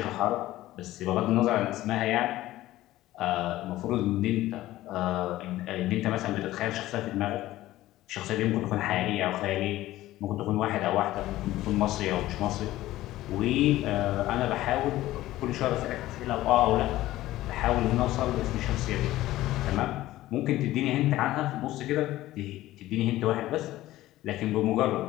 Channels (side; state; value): right; quieter; 15.7 dB